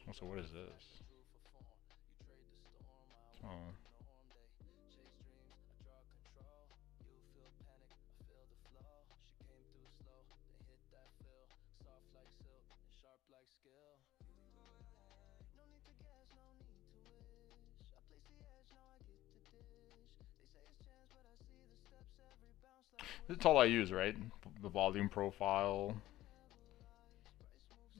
Oh, so what is this? Oh. It's all I use, right? The volume profile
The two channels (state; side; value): quieter; right; 15.2 dB